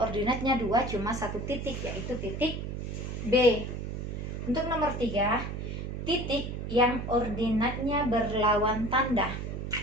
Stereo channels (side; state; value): right; noise; hum, 5 dB below the sound